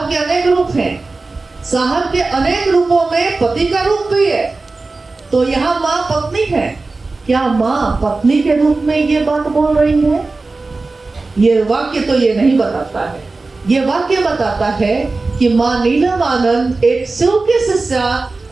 के अनेक रूप हैं। साहब के अनेक रूपों में पति का रूप भी है। तो यहाँ माँ पत्नी है। क्या माँ पत्नी के रूप में ये बात बोल रही है? ये वाक्य तो ये नहीं बताता है। ये वाक्य बताता है कि माँ नीलम आनंद एक शिव के शिष्या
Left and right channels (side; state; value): left; quieter; 3.6 dB